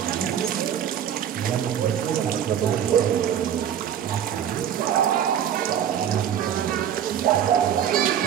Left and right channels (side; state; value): left; quieter; 9.6 dB